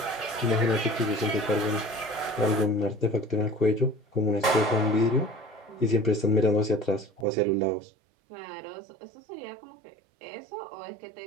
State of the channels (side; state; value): left; drops out; at 7.2 s